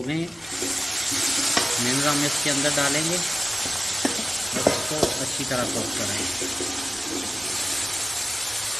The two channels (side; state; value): both; normal; correlation 0.97